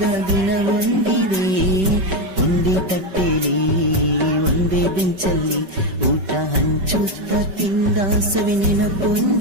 ದಿನ ಬಂದಿದೆ. ಒಂದೇ ತಟ್ಟೆಲಿ ಒಂದೇ ಬೆಂಚಲ್ಲಿ ಊಟ ಹಂಚುತ್ತ ತಿಂದ ಸವಿ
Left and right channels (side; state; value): left; late; 5.3 ms